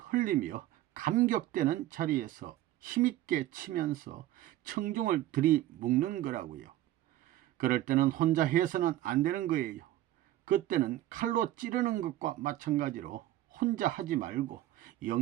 감격되는 자리에서 힘있게 치면서 청중을 들이묶는 거라고요. 그럴 때는 혼자 해서는 안 되는 거예요. 그때는 칼로 찌르는 것과 마찬가지로 혼자 하지 말고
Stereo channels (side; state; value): left; quieter; 14.5 dB